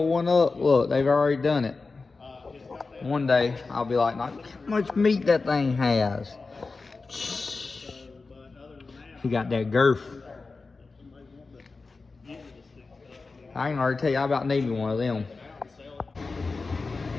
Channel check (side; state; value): right; quieter; 4.0 dB